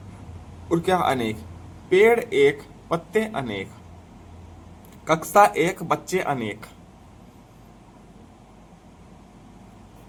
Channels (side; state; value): both; identical; correlation 1.00